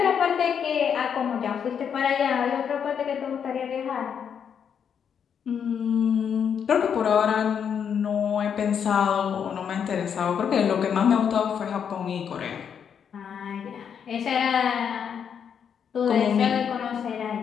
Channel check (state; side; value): quieter; right; 7.7 dB